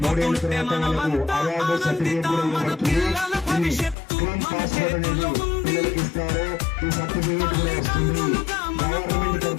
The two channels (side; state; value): right; drops out; at 4.0 s